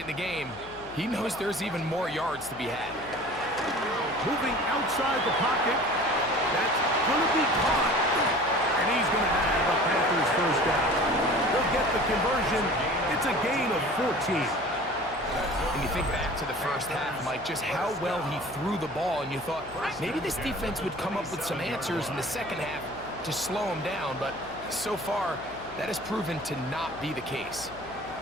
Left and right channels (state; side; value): noise; left; hum, 21 dB below the sound